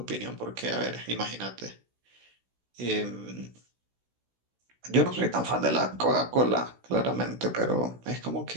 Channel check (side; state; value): left; late; 16 ms